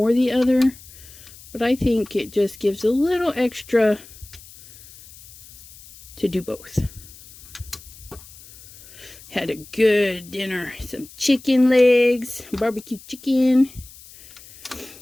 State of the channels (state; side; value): noise; left; hiss, 20 dB below the sound